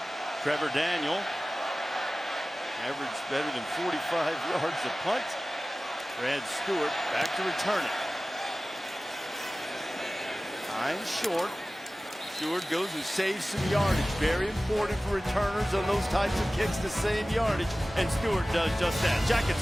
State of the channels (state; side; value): normal; both; correlation 0.97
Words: Trevor Daniel averaged better than 45 yards a punt. Brad Stewart back to return it. Time short. Stewart goes and saves some yardage. Very important for returners on those types of kicks to save yardage. And Stewart does just that. Jackets